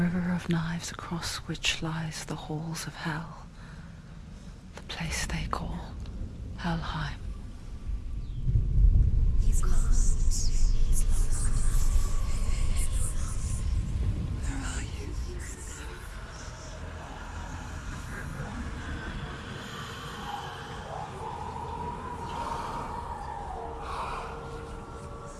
of knives across which lies the halls of hell. The place they call Helheim. He's lost. He's lost. Where are you?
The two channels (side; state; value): both; identical; correlation 1.00